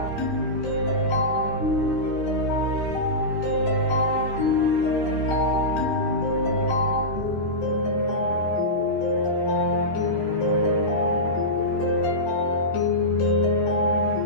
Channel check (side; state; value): right; late; 13 ms